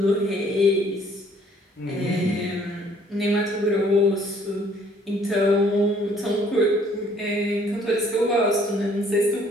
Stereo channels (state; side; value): normal; both; correlation 0.61